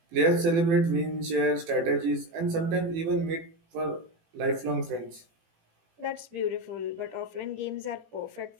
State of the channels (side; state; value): left; late; 18 ms